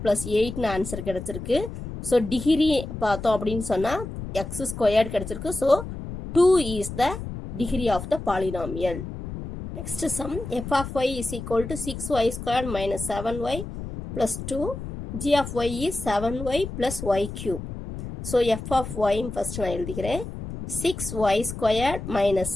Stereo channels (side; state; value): left; noise; rumble, 8 dB below the sound